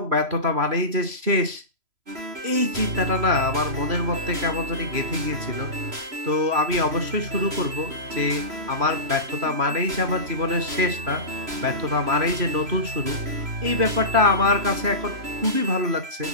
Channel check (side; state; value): left; late; 3.0 ms